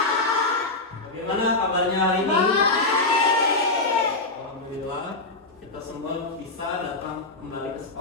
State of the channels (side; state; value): right; quieter; 3.1 dB